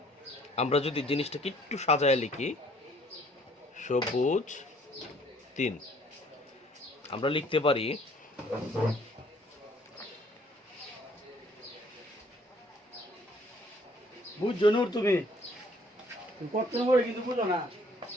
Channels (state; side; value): normal; both; correlation 0.59